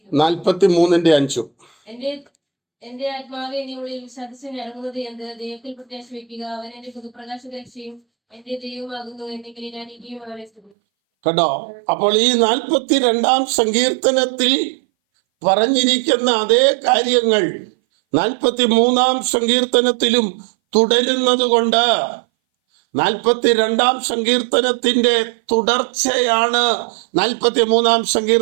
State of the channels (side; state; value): left; drops out; at 10.7 s